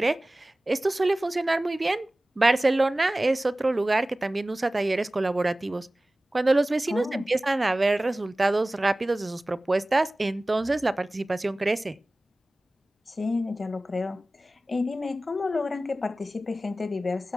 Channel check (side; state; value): both; normal; correlation 0.97